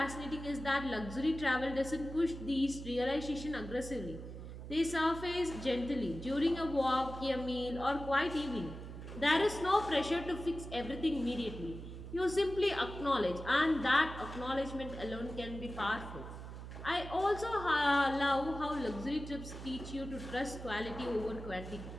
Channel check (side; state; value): right; noise; hum, 10 dB below the sound